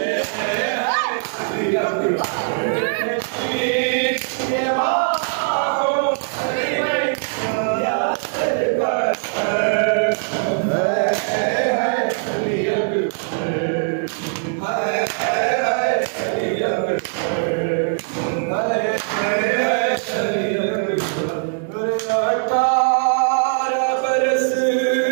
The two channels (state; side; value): silent; left; digital silence